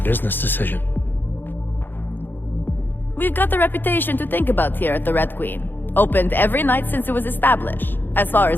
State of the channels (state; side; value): late; right; 0.095 ms